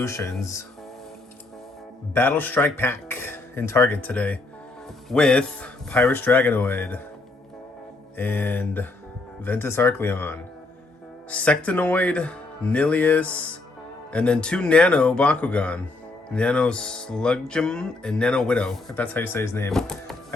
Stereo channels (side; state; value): right; quieter; 3.2 dB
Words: Battle Strike Pack in Target today with Pyrus Dragonoid and Ventus Arcleon, Sectanoid, Nillious, and then two Nano Bakugan, Nano Sludgem and Nano Widow, if that's how you say his name.